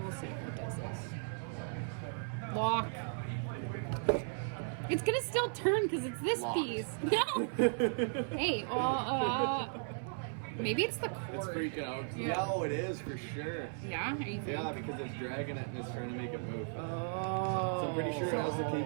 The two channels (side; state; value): left; silent; 54 dB below the other